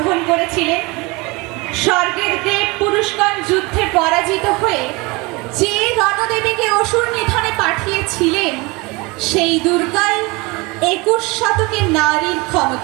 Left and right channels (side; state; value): left; quieter; 25.4 dB